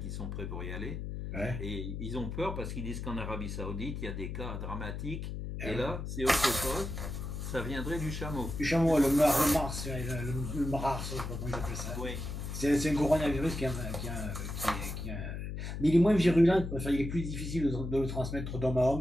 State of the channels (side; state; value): left; noise; hum, 5 dB below the sound